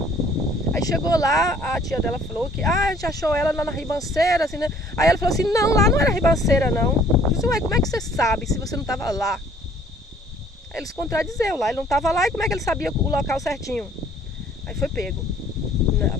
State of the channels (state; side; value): normal; both; correlation 0.58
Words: Aí chegou lá, a tia dela falou que a gente achou ela lá na ribanceira, assim, né? Aí ela falou assim, não, lá não era ribanceira não. Eu falei assim, ué, como é que você sabe se você não estava lá? Aí ele se contradizeu lá, ele não estava lá e como é que ele sabia o local certinho? Aí foi pego.